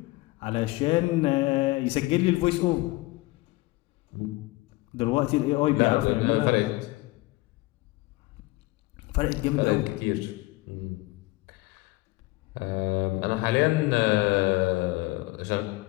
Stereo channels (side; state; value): right; quieter; 21.0 dB